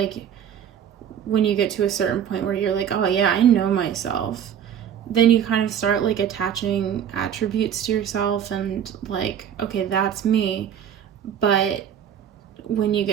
when you get to a certain point where you're like, oh yeah, I know myself, then you kind of start like attaching attributes to yourself and like, okay, that's me. But when you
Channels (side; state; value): left; quieter; 9.1 dB